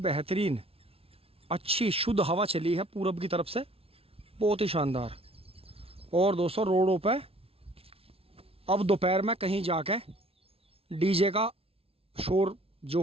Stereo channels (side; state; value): left; late; 0.28 ms